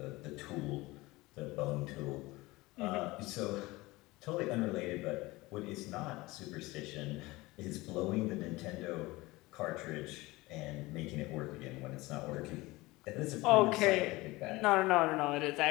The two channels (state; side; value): quieter; right; 20.9 dB